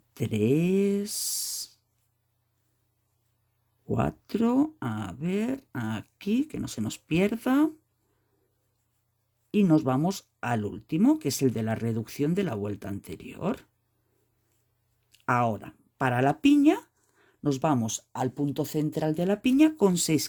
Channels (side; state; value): both; identical; correlation 1.00